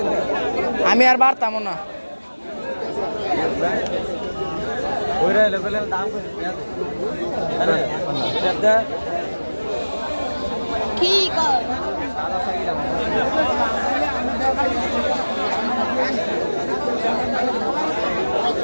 আমি আর বাড়তাম না। কি কর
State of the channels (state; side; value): inverted; both; correlation -1.00